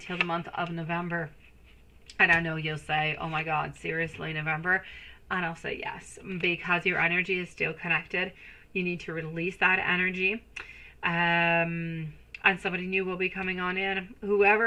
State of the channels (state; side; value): identical; both; correlation 1.00